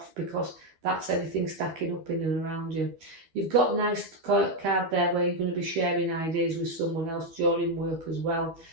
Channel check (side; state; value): left; late; 12 ms